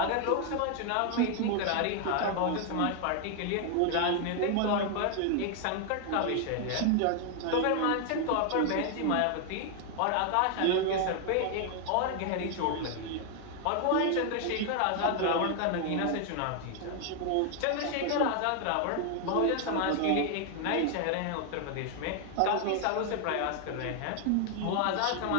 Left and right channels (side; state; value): both; different; correlation 0.00